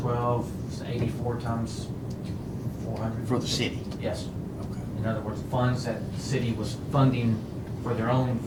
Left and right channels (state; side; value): identical; both; correlation 1.00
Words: 84 times 400. For the city? Yes. Okay. In other words, funds that the city was funding for